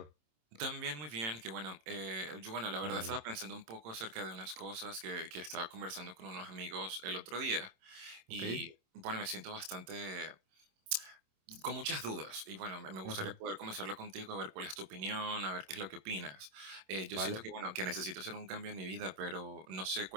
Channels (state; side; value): late; left; 27 ms